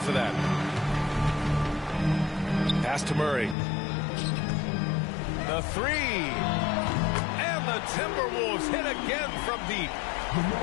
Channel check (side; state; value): right; drops out; at 3.6 s